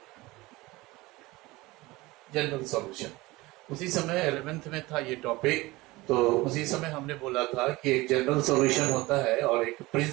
जनरल सॉल्यूशन उसी समय 11th में था ये टॉपिक, तो उसी समय हमने बोला था कि एक जनरल सॉल्यूशन होता है और एक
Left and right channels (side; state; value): left; quieter; 20.9 dB